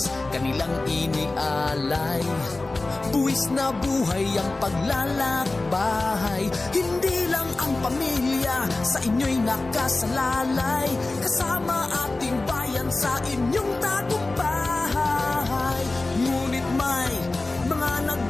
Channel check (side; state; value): right; quieter; 3.2 dB